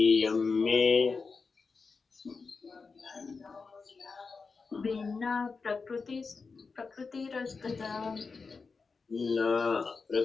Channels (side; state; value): right; quieter; 4.6 dB